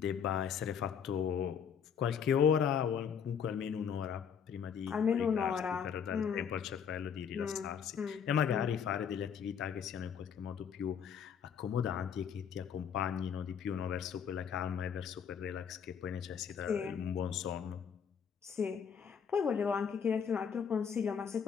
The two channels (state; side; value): quieter; right; 7.4 dB